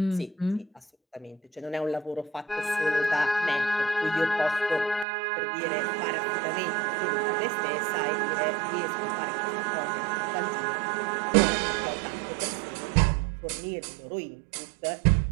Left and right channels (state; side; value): drops out; left; at 5.1 s